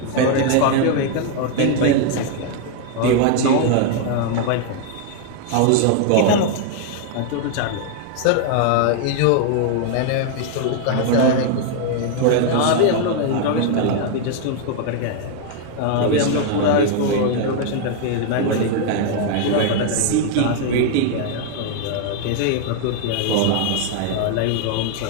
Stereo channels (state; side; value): different; both; correlation 0.00